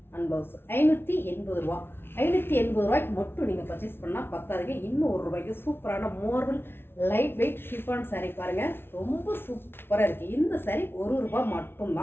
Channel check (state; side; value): late; right; 0.11 ms